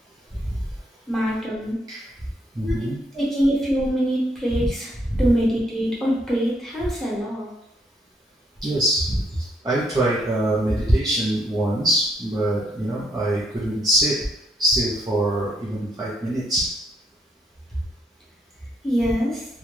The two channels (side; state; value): both; normal; correlation 0.73